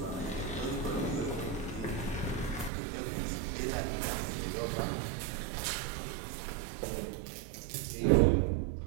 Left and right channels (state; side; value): drops out; left; at 2.7 s